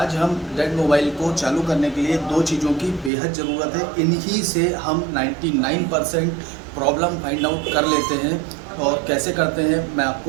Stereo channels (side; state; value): left; drops out; at 3.1 s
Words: हम डेड मोबाइल को चालू करने के लिए दो चीज़ों की बेहद ज़रूरत है। इन्हीं से हम 99% प्रॉब्लम फाइंड आउट कर लेते हैं। और कैसे करते हैं मैं